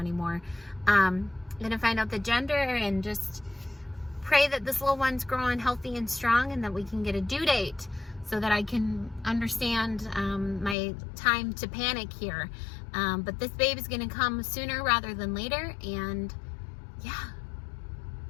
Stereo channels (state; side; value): drops out; right; at 10.8 s